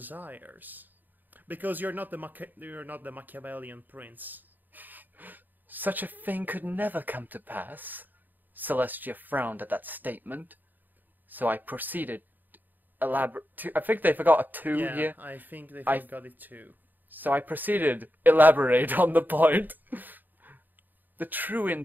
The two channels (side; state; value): left; late; 0.088 ms